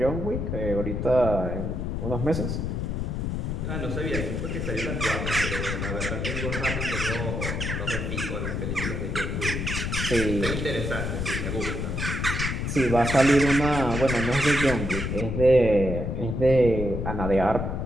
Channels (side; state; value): left; noise; rumble, 2 dB below the sound